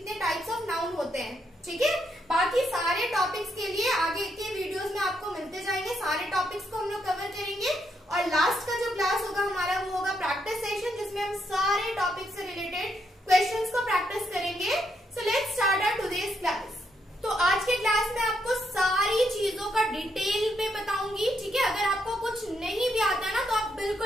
टाइप्स ऑफ नाउन होते हैं। ठीक है, बाकी सारे टॉपिक्स के लिए आगे के वीडियोस में आपको मिलते जाएंगे। सारे टॉपिक्स को हम लोग कवर करेंगे, और लास्ट का जो क्लास होगा हमारा वो होगा प्रैक्टिस सेशन, जिसमें हम सारे टॉपिक से रिलेटेड क्वेश्चंस को प्रैक्टिस करेंगे। So let's start our today's class. तो आज के क्लास में आपको सारी चीजों का डिटेल में बताऊंगी। ठीक है, अगर आपको कुछ नहीं भी आता ना तो आप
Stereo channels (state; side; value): normal; both; correlation 0.77